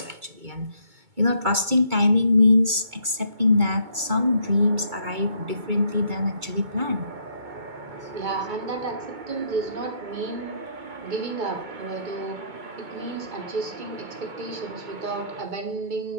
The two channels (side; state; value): left; late; 2.2 ms